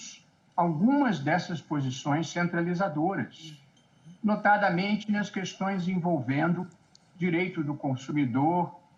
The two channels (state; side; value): identical; both; correlation 1.00